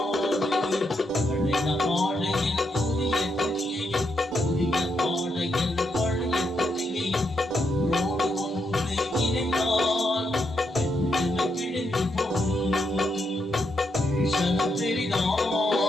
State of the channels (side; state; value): both; normal; correlation 0.80